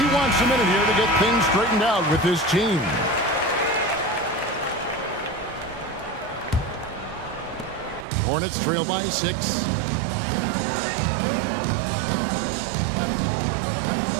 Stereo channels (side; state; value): left; drops out; at 8.1 s